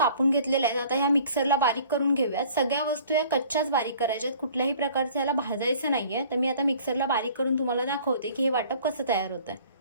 घेतलेल्या आहेत। आता ह्या मिक्सरला बारीक करून घेऊयात। सगळ्या वस्तू या कच्च्याच बारीक करायच्यात, कुठल्याही प्रकारचं याला भाजायचं नाहीये। तर मी आता मिक्सरला बारीक करून तुम्हाला दाखवते की हे वाटप कसं तयार होतंय।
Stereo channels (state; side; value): inverted; both; correlation -0.51